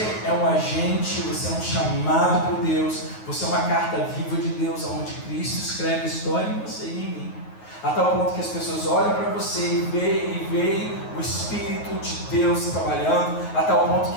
é um agente, você é um chamado por Deus, você é uma carta viva de Deus, onde Cristo escreve a história em você e em mim, a tal ponto que as pessoas olham para você e veem o Espírito de Deus trabalhando, a tal ponto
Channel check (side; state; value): right; late; 9.4 ms